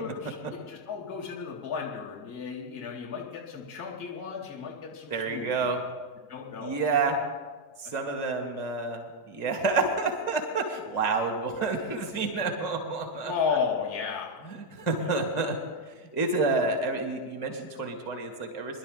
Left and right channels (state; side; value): late; right; 1.9 ms